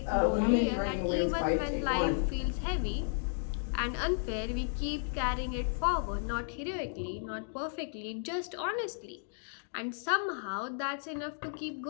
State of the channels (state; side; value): silent; right; digital silence